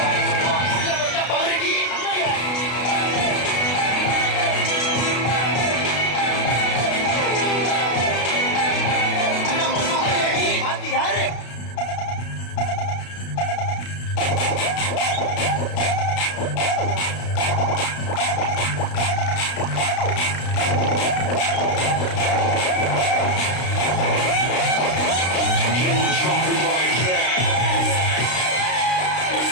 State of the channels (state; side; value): late; right; 33 ms